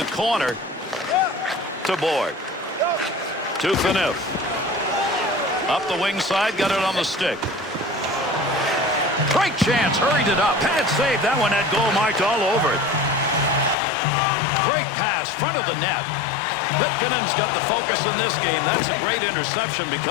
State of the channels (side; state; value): right; drops out; at 13.8 s